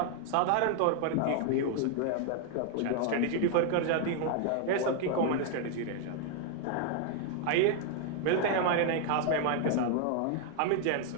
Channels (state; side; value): different; both; correlation 0.00